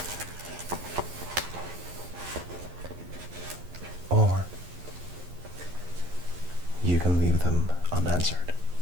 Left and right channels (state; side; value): late; left; 11 ms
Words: or you can leave them unanswered.